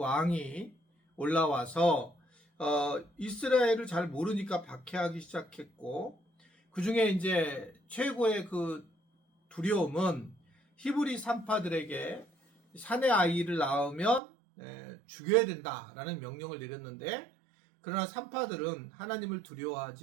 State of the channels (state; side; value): drops out; left; at 14.2 s